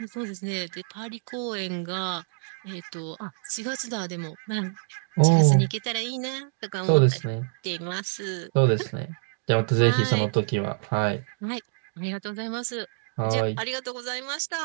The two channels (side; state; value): left; silent; digital silence